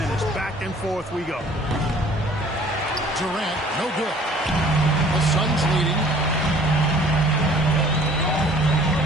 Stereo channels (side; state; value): both; normal; correlation 0.53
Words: Back and forth we go. Durant, no good. The Suns leading.